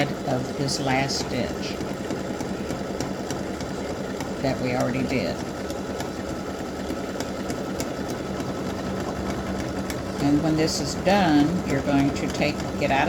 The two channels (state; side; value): identical; both; correlation 1.00